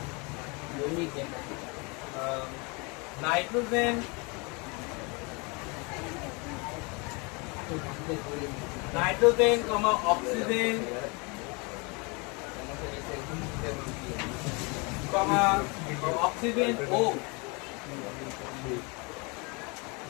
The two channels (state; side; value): quieter; right; 29.8 dB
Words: নাইট্রোজেন কমা অক্সিজেন কমা অক্সিজেন ও